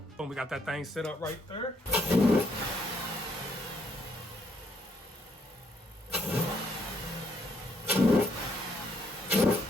Boom, we got that thing set up right there.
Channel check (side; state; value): both; normal; correlation 0.72